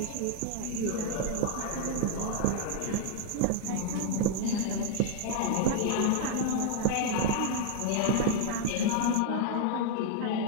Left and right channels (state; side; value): different; both; correlation 0.00